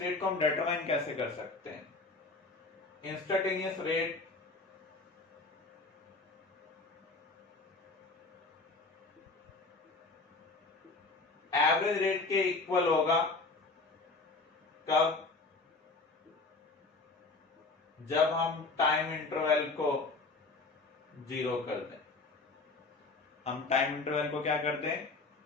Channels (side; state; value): right; quieter; 3.6 dB